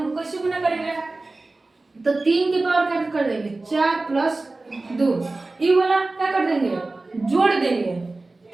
कैसे गुना करेंगे, तो 3 के पावर क्या कर देंगे 4 प्लस 2, ये वाला क्या कर देंगे जोड़ देंगे,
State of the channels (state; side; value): quieter; left; 3.2 dB